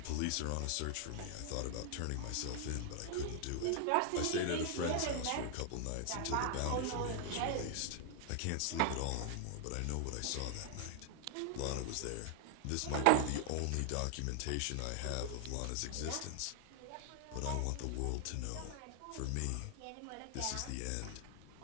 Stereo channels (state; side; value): different; both; correlation 0.00